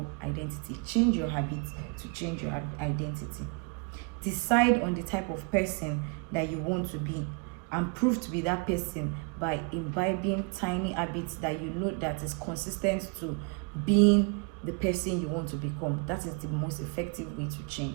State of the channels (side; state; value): left; quieter; 31.7 dB